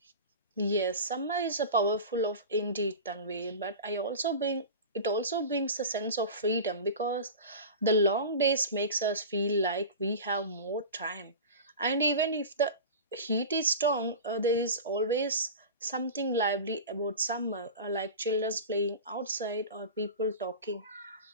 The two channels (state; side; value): inverted; both; correlation -0.31